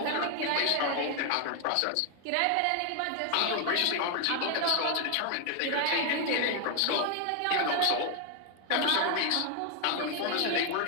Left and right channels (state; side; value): different; both; correlation 0.01